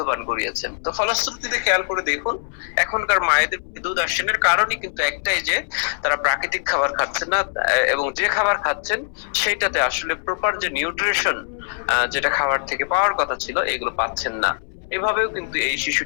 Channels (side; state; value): right; silent; 64 dB below the other